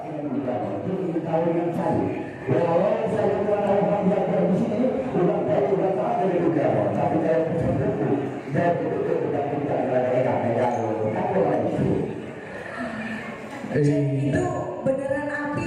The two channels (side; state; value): both; identical; correlation 1.00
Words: Tahun yang saya, awal saya tahu yang ada di sini, udah tak ada juga, tapi saya betul-betul tidak itu beneran api